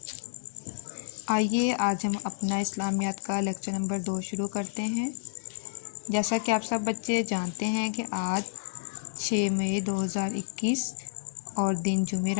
آئیے آج ہم اپنا اسلامیات کا لیکچر نمبر 2 شروع کرتے ہیں۔ جیسا کہ آپ سب بچے جانتے ہیں کہ آج 6 مئی 2021 اور دن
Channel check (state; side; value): silent; right; digital silence